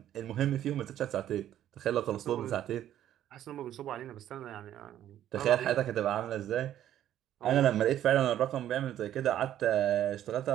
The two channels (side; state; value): left; quieter; 11.7 dB